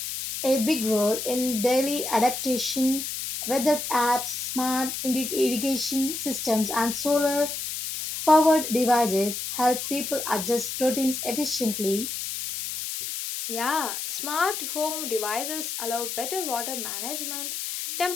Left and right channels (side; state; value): left; noise; hiss, 5 dB below the sound